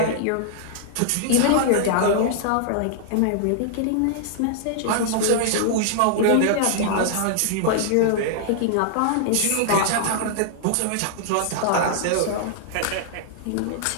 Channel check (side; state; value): both; different; correlation -0.01